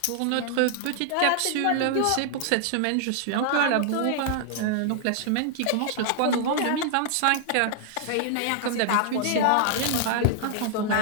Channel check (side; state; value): both; different; correlation -0.01